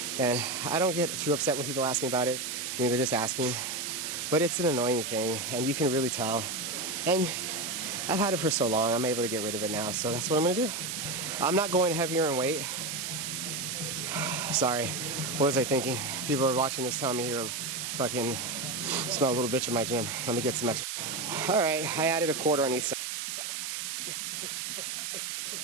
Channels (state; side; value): noise; right; hiss, 4 dB below the sound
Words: And I don't get too upset when people ask me about it. I mean, they're just asking. But it's an annoying thing, and you can really tell. And I've had it for so long, I'm able to get rid of it now, so that's what I'm gonna do. I'm not going heavier in weight. Sorry, what was I thinking? People are watching this telling me here, fucking smell a little bitch in my gym. Let me get some extra. All right, I added a quarter on each side.